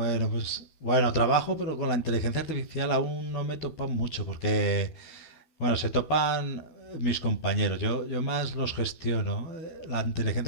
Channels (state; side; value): late; right; 13 ms